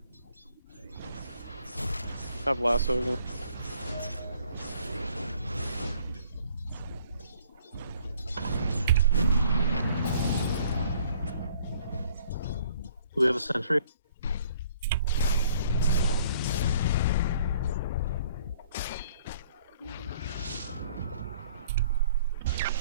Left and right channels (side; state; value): both; inverted; correlation -0.59